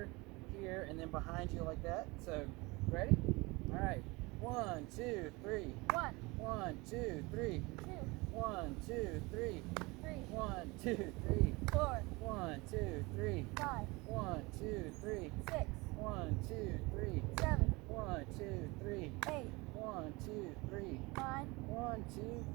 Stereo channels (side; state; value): left; quieter; 24.5 dB